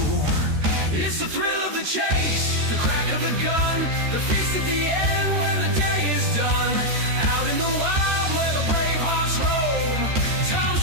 It's the thrill of the chase, the crack of the gun, the feast at the end when the day is done. Out in the wild where the brave hearts roam, Tom's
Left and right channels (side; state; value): left; late; 13 ms